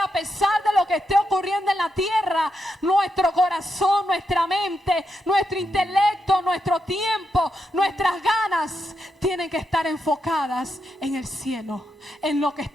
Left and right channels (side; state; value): both; normal; correlation 0.84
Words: pesar de lo que esté ocurriendo en la tierra, nuestro corazón, nuestra mente, nuestro intelecto, nuestro tiempo, nuestras ganas tienen que estar enfocadas en el cielo, en lo que